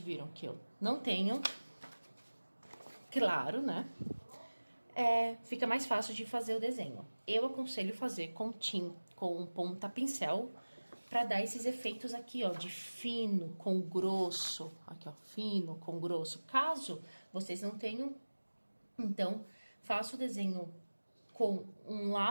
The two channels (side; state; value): both; inverted; correlation -1.00